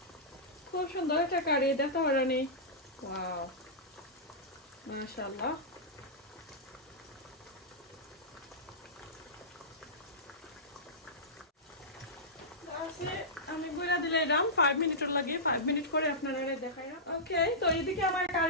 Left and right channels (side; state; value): both; normal; correlation -0.15